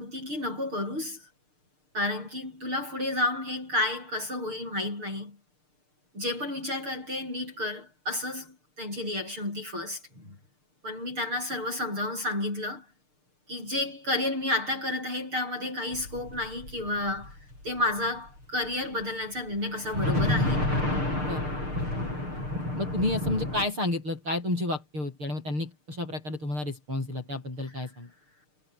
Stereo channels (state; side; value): late; left; 6.6 ms